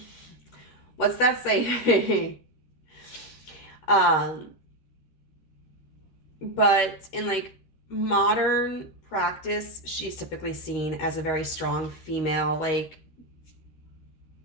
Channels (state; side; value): late; right; 13 ms